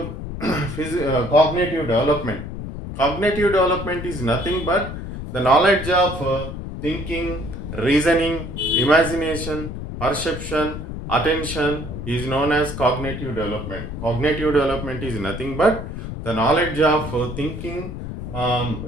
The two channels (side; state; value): left; noise; rumble, 8 dB below the sound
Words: cognitive development? Cognitive development is nothing but the knowledge of thinking, reasoning, imagination, perception, attention is known as cognitive development. Cognitive development is nothing but the knowledge of thinking,